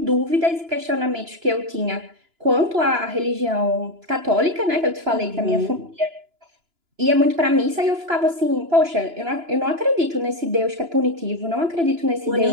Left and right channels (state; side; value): late; left; 2.9 ms